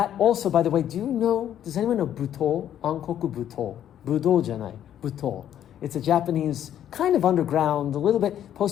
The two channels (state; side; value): quieter; right; 10.5 dB